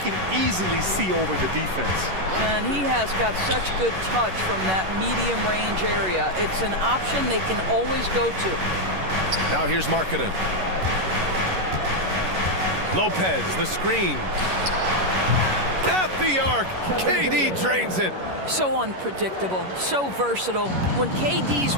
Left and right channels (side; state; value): left; late; 11 ms